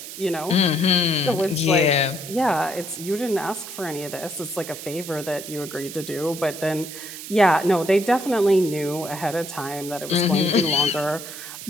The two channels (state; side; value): noise; right; hiss, 11 dB below the sound